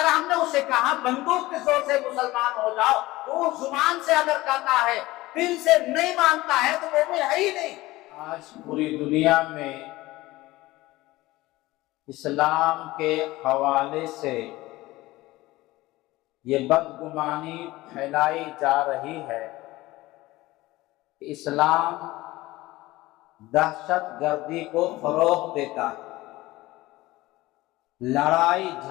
ہم نے اسے کہا بندوق کے زور سے مسلمان ہو جاؤ تو وہ زبان سے اگر کہتا ہے دل سے نہیں مانتا ہے تو مومن ہے ہی نہیں۔ آج پوری دنیا میں اسلام کے حوالے سے یہ بدگمانی پھیلائی جا رہی ہے کہ اسلام دہشت گردی کو فروغ دیتا ہے، لڑائی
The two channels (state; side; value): quieter; right; 18.7 dB